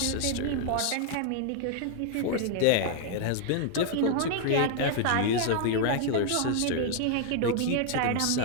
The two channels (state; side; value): different; both; correlation 0.00